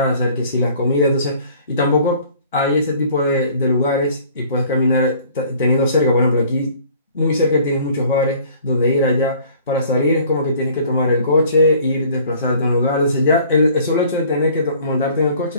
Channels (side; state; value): both; inverted; correlation -0.53